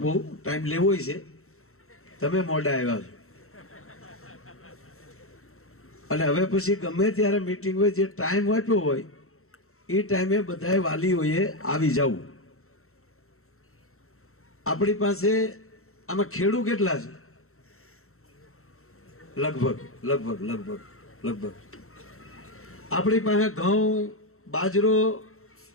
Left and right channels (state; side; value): late; right; 0.63 ms